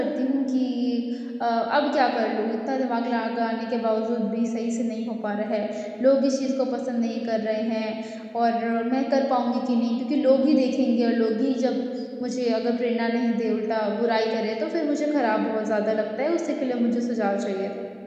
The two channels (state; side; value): identical; both; correlation 1.00